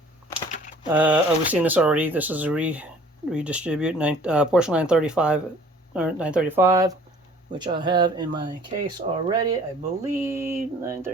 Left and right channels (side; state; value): both; normal; correlation 0.52